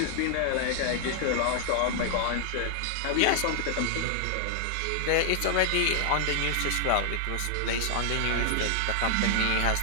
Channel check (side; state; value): both; different; correlation -0.01